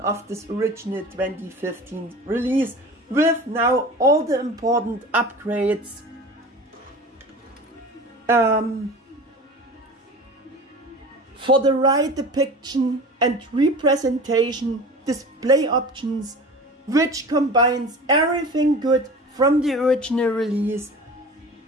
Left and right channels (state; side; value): normal; both; correlation 0.37